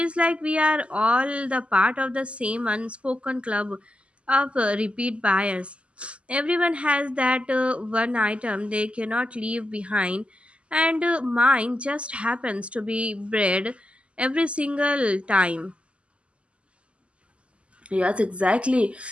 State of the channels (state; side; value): late; left; 0.057 ms